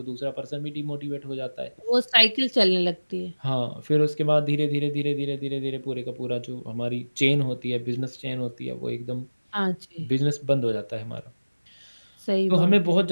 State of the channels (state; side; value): inverted; both; correlation -1.00